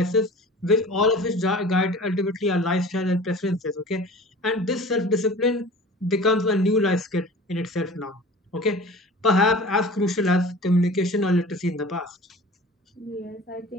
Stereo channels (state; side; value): normal; both; correlation 0.41